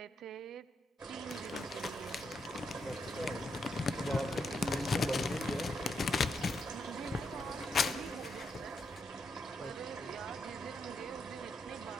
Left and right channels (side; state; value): both; normal; correlation 0.81